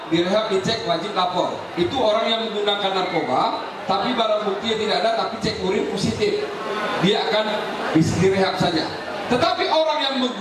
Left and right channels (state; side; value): identical; both; correlation 1.00